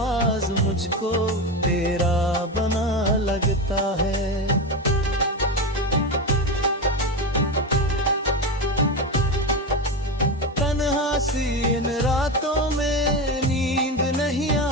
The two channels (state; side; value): normal; both; correlation 0.18